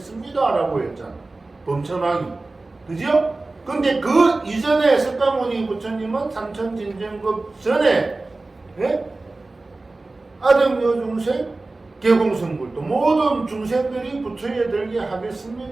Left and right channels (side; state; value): left; quieter; 3.2 dB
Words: 라고 했잖아. 범천왕이. 그죠? 근데 그 이전에 석가모니 부처님은 삼천진정급 전에 아등여중생 개공성불도 모든 중생들이 부처에 들게